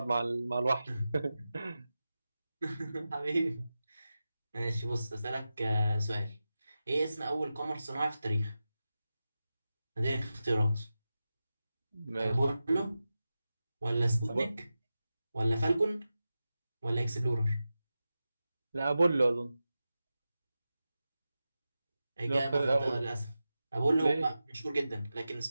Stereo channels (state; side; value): inverted; both; correlation -0.93